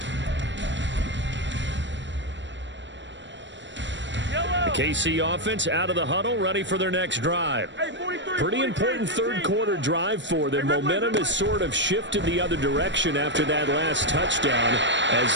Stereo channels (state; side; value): late; left; 0.53 ms